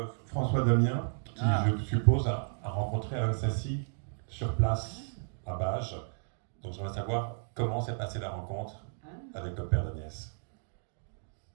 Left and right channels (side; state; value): left; silent; digital silence